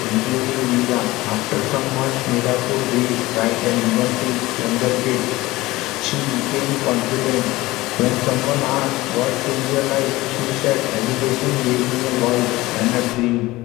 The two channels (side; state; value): right; quieter; 19.2 dB